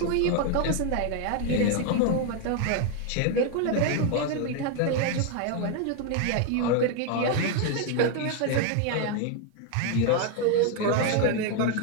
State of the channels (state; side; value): different; both; correlation 0.01